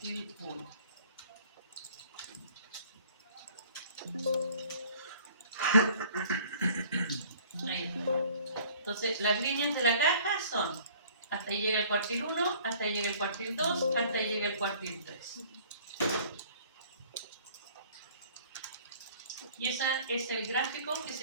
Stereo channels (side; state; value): both; inverted; correlation -0.53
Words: 1. Ahí está. Entonces, las líneas de la caja son, hasta ahí llega el cuartil 1, hasta ahí llega el cuartil 2, hasta ahí llega el cuartil 3. Y ese es el gráfico que